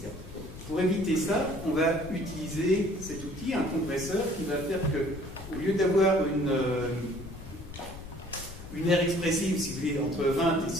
Pour éviter ça, on va utiliser cet outil, un compresseur, qui va faire que, au lieu d'avoir une aire expressive, si vous voulez, entre 20 et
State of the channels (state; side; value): noise; left; rumble, 13 dB below the sound